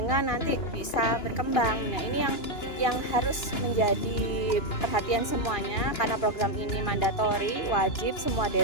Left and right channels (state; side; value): late; right; 2.9 ms